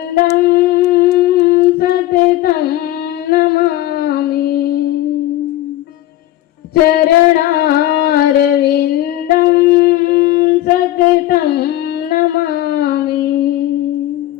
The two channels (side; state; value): right; quieter; 15.0 dB